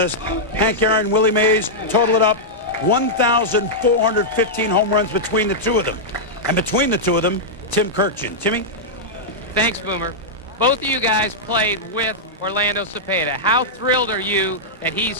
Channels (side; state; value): both; normal; correlation -0.08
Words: Hank Aaron, Willie Mays, total it up, 1,415 home runs between the two of them. And between the two of them, Tim Kirkjian. Timmy? Thanks, Boomer. Both of you guys played with Orlando Cepeda. How thrilled are you that he's